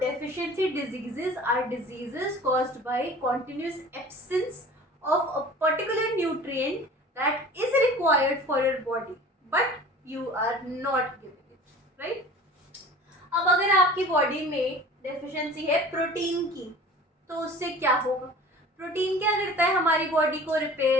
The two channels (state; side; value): normal; both; correlation 0.42